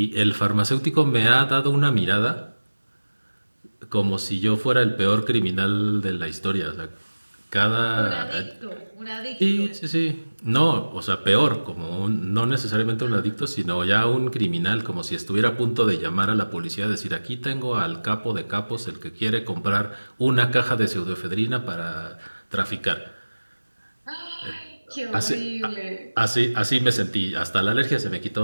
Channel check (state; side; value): inverted; both; correlation -1.00